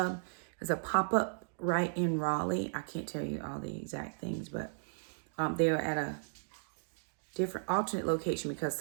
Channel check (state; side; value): silent; left; digital silence